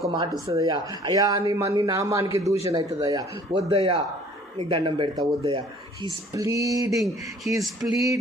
మాట వస్తుంది అయ్యా. అయ్యా నీ నామానికి దూషణ అవుతుంది అయ్యా, వద్దయ్యా నీకు దండం పెడతా, వద్దయ్యా. He's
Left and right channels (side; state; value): both; normal; correlation 0.54